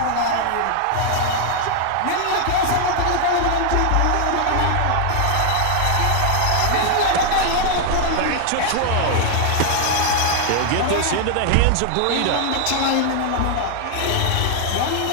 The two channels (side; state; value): both; different; correlation 0.00